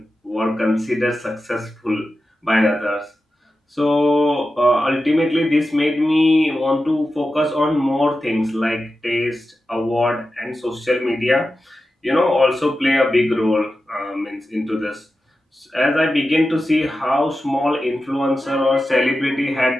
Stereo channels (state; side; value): normal; both; correlation 0.92